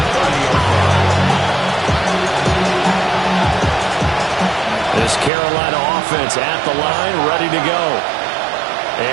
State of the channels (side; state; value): left; drops out; at 5.3 s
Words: This Carolina offense at the line, ready to go.